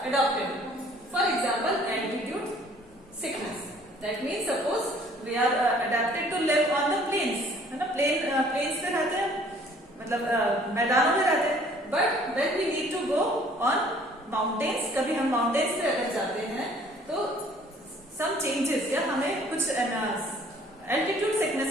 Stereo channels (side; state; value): both; normal; correlation 0.56